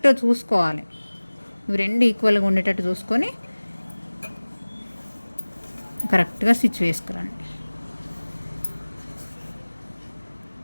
చూసుకోవాలి, ఇవి రెండు ఈక్వల్గా ఉండేటట్టు చూసుకొని కరెక్ట్గా స్టిచ్ వేసుకురండి.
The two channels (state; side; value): inverted; both; correlation -1.00